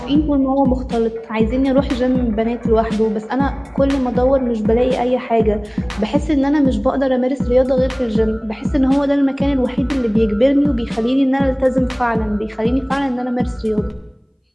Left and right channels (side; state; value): both; identical; correlation 1.00